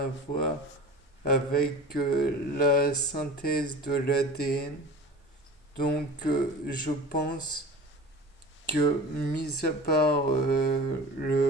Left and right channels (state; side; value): normal; both; correlation 0.37